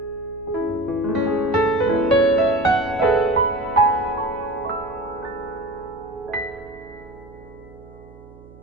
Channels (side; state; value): right; noise; hum, 21 dB below the sound